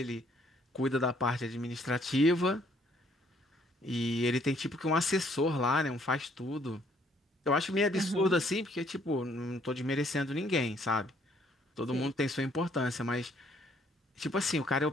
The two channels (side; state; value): both; normal; correlation 0.65